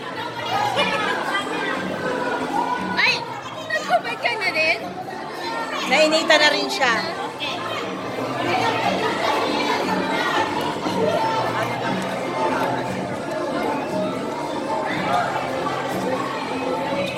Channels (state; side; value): identical; both; correlation 1.00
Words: Ay! Nagkubad ka na din? Nainita na rin siya.